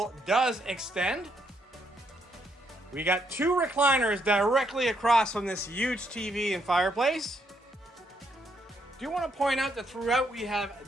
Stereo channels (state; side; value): normal; both; correlation 0.74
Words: does extend. We got 2 recliners directly across from this huge TV and fireplace. Do want to point out that throughout we have